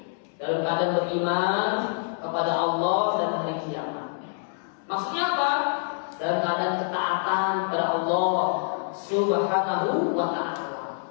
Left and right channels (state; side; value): silent; right; digital silence